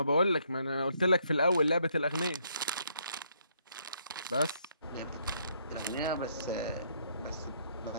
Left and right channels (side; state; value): both; inverted; correlation -0.70